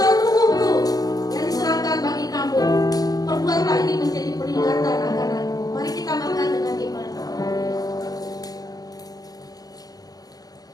tubuhku yang diserahkan bagi kamu, perbuatlah ini menjadi peringatan akan aku. Mari kita makan dengan iman.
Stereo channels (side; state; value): right; late; 0.18 ms